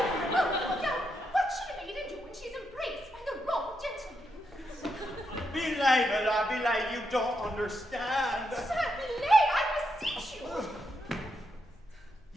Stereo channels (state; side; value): normal; both; correlation 0.82